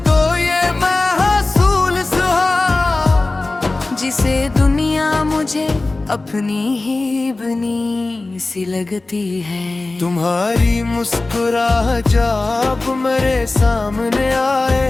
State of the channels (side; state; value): right; quieter; 3.2 dB